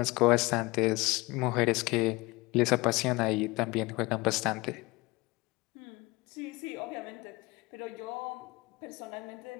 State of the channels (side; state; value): right; quieter; 22.7 dB